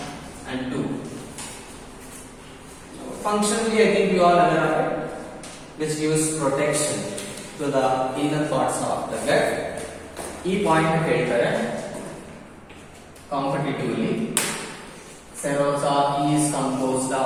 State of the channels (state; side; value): identical; both; correlation 1.00